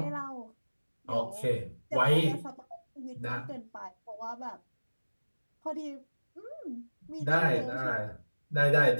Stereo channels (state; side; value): inverted; both; correlation -1.00